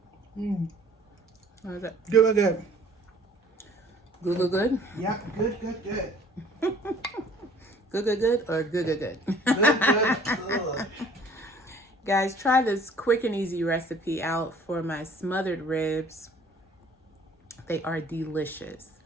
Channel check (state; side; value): normal; both; correlation 0.54